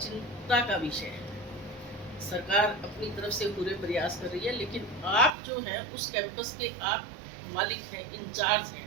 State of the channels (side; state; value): left; drops out; at 5.4 s